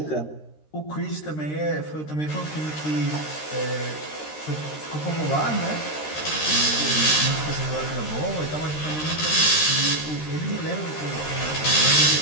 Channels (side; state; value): right; late; 13 ms